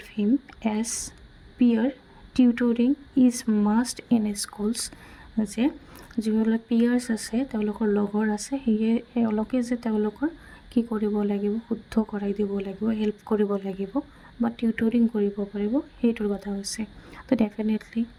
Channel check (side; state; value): both; identical; correlation 1.00